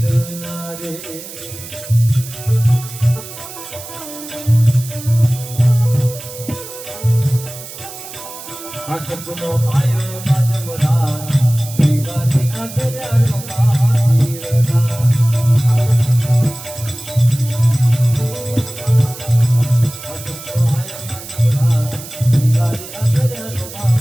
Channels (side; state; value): right; noise; hiss, 13 dB below the sound